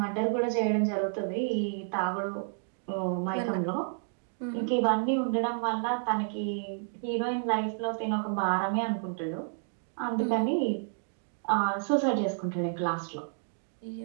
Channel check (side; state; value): left; silent; digital silence